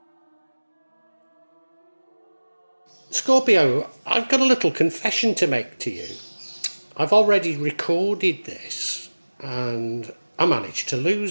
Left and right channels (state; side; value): inverted; both; correlation -1.00